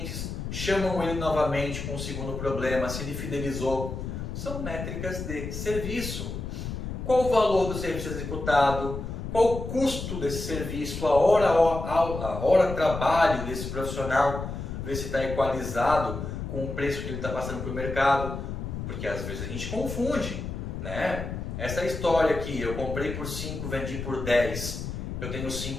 chamam ele novamente com o segundo problema, se ele fidelizou. São métricas de serviço. Qual o valor do serviço executado? Qual o custo desse serviço? A hora trabalho desse profissional? Ver se está equalizado com o preço que ele está passando para o mercado. Porque às vezes a gente confunde, Essa história aqui, eu comprei por 5, vendi por 10, eu tenho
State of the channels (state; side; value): noise; left; rumble, 6 dB below the sound